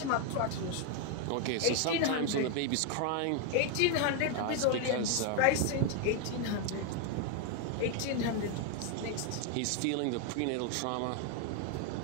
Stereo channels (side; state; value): both; different; correlation 0.00